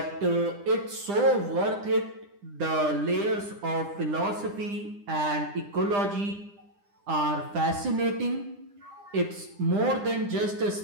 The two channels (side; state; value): left; late; 9.9 ms